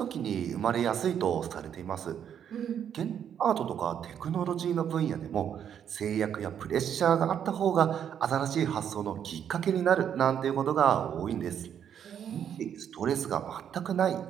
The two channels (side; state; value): left; quieter; 8.9 dB